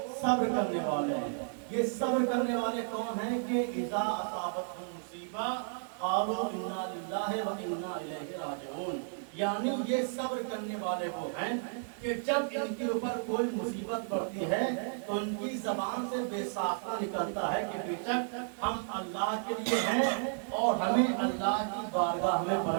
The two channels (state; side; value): silent; left; digital silence